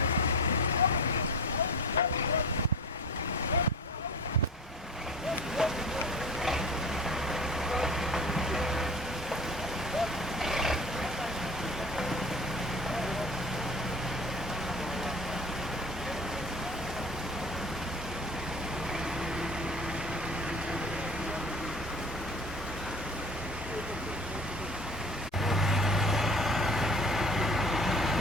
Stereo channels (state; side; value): normal; both; correlation 0.38